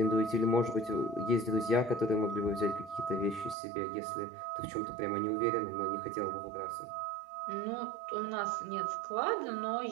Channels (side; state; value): left; drops out; at 3.6 s